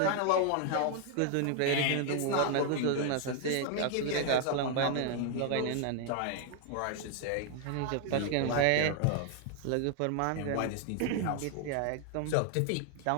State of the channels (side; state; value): both; different; correlation 0.00